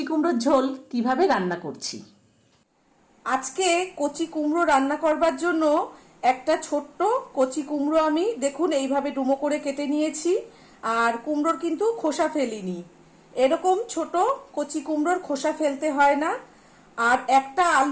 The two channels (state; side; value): identical; both; correlation 1.00